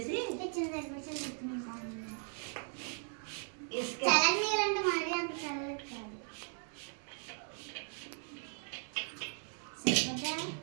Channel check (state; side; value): silent; left; 53 dB below the other